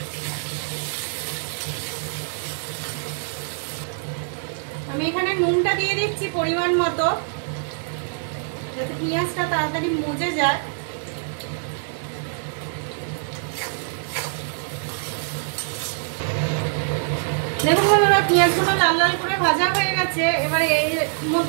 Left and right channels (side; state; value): left; silent; digital silence